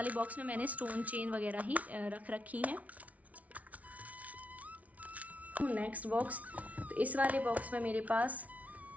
बॉक्स में मैंने स्टोन चेन वगैरह ही रख रखी हैं। नेक्स्ट बॉक्स, तो इस वाले बॉक्स में मेरे पास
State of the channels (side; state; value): left; late; 0.069 ms